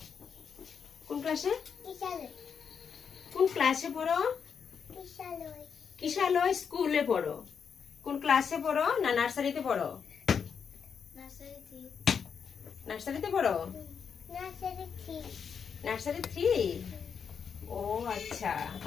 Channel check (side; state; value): right; quieter; 6.7 dB